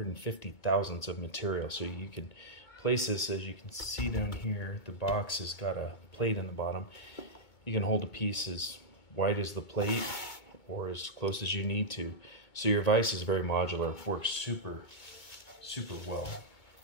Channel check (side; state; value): right; late; 2.2 ms